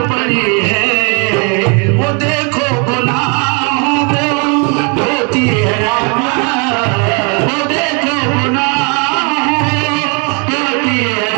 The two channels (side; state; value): left; quieter; 34.6 dB